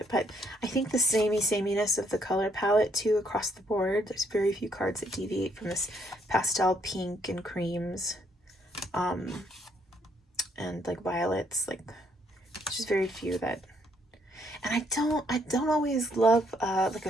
But I think the sameness of the color palette too across the board. There's very few cards that deviate from this pastel pink and creams, and like violets. Like, just very few that. And I don't always love like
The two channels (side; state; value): both; normal; correlation 0.70